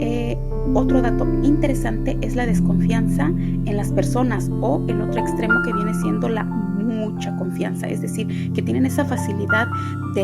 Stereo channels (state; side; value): identical; both; correlation 1.00